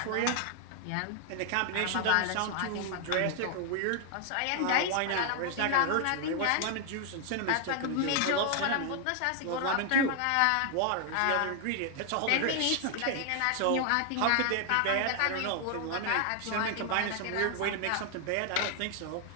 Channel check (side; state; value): both; different; correlation 0.00